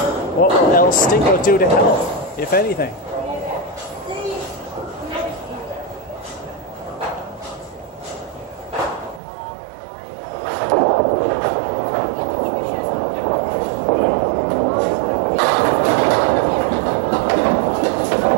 What will El Stinko do to health, if anything?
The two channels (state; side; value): drops out; left; at 9.2 s